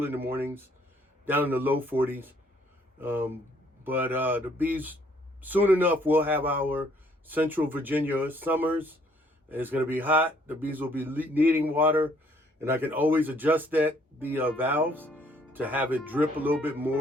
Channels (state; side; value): normal; both; correlation 0.64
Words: in the mornings, down in the low 40s. But the bees, soon enough, we'll have our Central Virginia summers, and it's going to be hot. The bees will be needing water, and I can always adjust the valves to have it drip a little bit